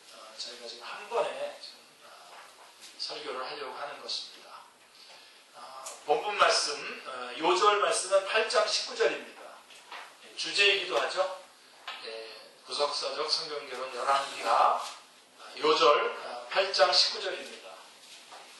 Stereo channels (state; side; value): identical; both; correlation 1.00